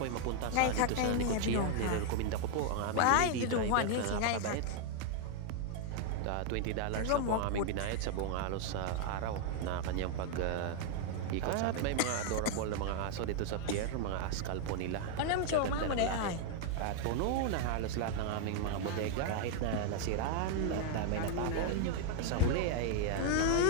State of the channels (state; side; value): different; both; correlation 0.00